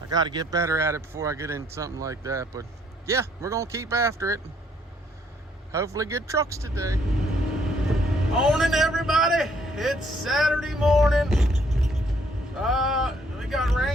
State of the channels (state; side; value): normal; both; correlation 0.67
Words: got to get better at it before I get into something like that. But yeah, we're gonna keep after it. Hopefully get trucks today. Morning, everybody. It's Saturday morning. We got